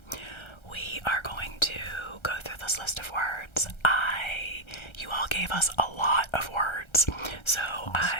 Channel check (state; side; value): late; right; 1.3 ms